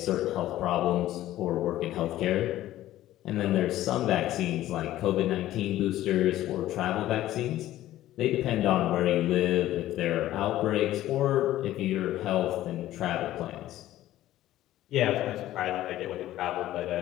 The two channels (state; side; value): quieter; right; 14.2 dB